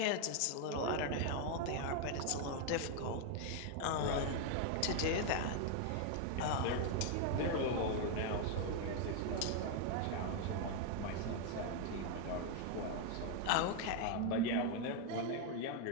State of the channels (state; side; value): different; both; correlation 0.01